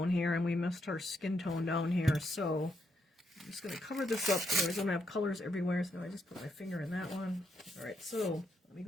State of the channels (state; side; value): normal; both; correlation 0.78